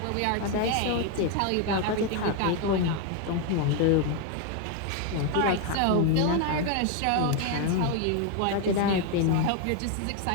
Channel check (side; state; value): both; different; correlation 0.01